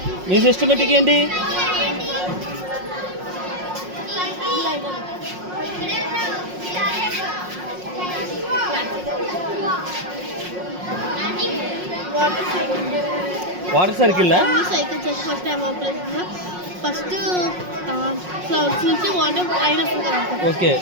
మీ సిస్టమేటిక్ ఏంటి? వాటర్ సర్కిల్ సైకిల్ చేసి ఫస్ట్ ఫస్ట్ క్లౌడ్స్ నుంచి వాటర్ అయినప్పుడు కదా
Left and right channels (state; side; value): late; left; 5.5 ms